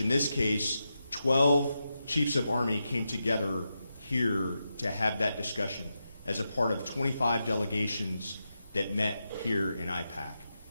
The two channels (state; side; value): inverted; both; correlation -0.88